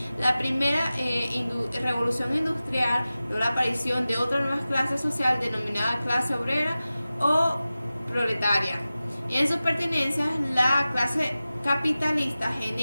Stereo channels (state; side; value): inverted; both; correlation -0.96